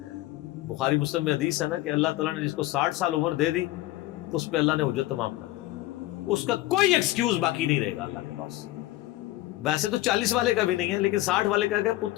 بخاری مسلم میں حدیث ہے نا کہ اللہ تعالیٰ نے جس کو 60 سال عمر دے دی تو اس پہ اللہ نے حجت تمام کر دی, اس کا کوئی ایکسکیوز باقی نہیں رہے گا اللہ کے پاس. ویسے تو 40 والے کا بھی نہیں ہے, لیکن 60 والے کا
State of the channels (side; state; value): right; quieter; 16.9 dB